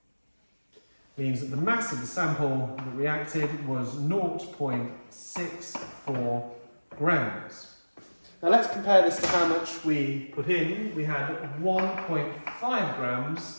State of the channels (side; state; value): both; inverted; correlation -1.00